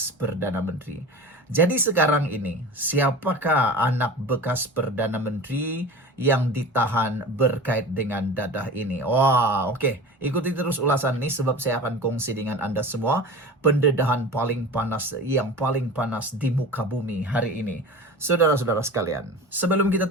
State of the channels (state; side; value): normal; both; correlation 0.34